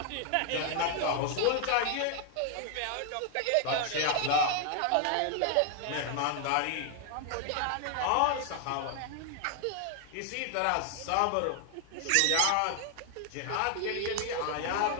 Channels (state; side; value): different; both; correlation 0.00